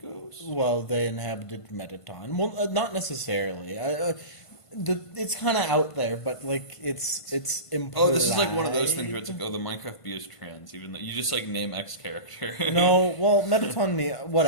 ghost? Well, they inhabited Metaton. Well, not necessarily. It's kind of out there, but it's implied. Oh, this is like one of those things where it's like, oh, the Minecraft bee is trans, even though you just name X character. No, well, Metaton,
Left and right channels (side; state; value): right; late; 1.5 ms